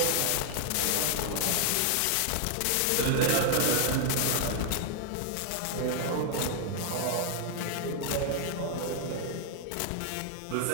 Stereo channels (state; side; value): different; both; correlation 0.00